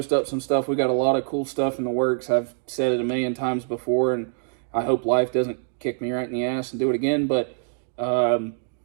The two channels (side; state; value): left; silent; digital silence